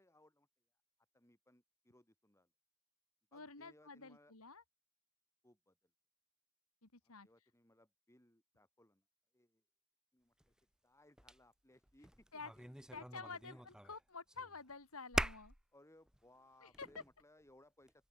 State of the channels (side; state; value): both; normal; correlation 0.59